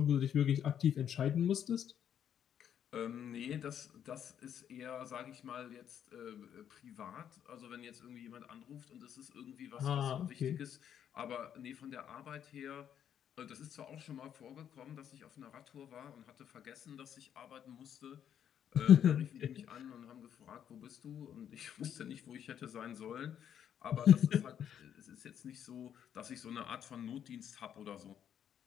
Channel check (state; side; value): quieter; right; 9.3 dB